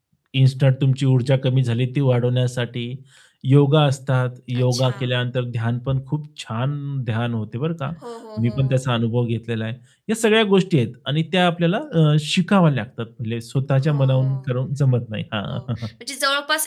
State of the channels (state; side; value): identical; both; correlation 1.00